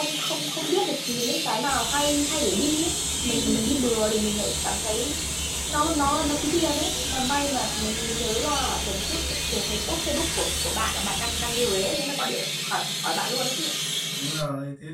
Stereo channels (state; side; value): identical; both; correlation 1.00